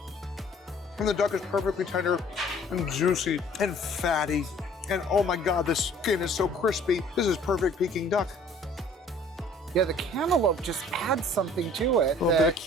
And the duck is perfectly tender and juicy and fatty. And oh my God, the skin is so crispy. This is perfect Peking duck. Yeah, the cantaloupe just adds something to it. A little bit of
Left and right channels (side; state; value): both; normal; correlation 0.54